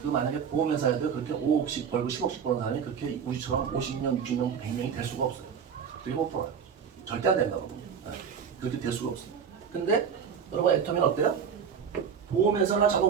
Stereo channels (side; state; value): left; quieter; 7.0 dB